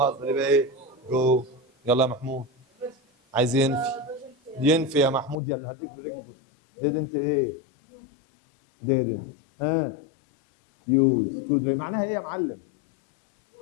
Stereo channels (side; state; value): right; drops out; at 5.4 s